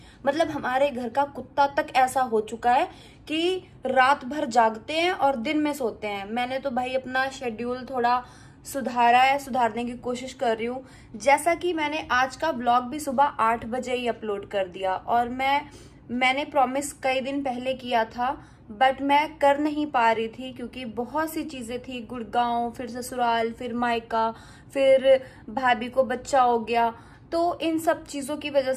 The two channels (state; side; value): identical; both; correlation 1.00